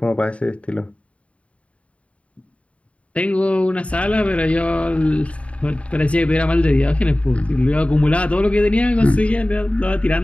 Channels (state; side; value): late; right; 0.064 ms